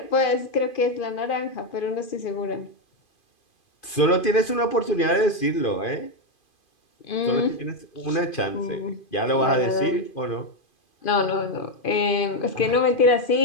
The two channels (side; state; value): right; late; 2.5 ms